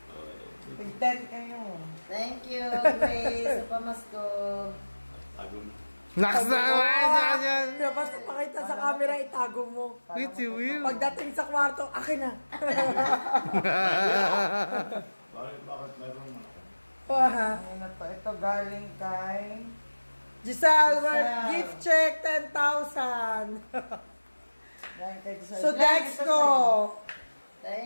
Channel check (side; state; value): both; inverted; correlation -1.00